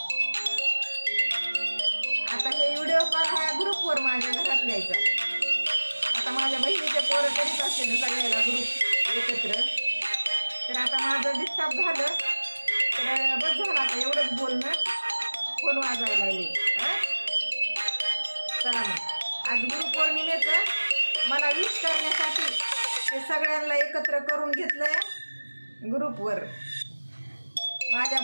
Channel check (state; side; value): inverted; both; correlation -1.00